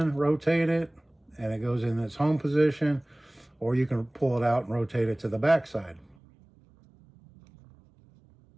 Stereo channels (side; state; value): left; drops out; at 6.2 s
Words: rotate it, and it goes in its home position, or you can pull it out and rotate it to the back side.